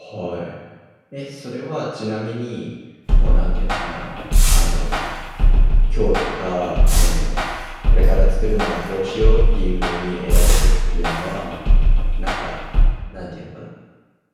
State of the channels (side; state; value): both; identical; correlation 1.00